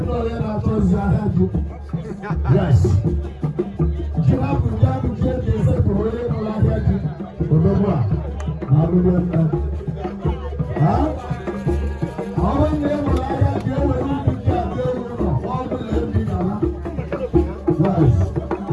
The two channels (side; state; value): both; identical; correlation 1.00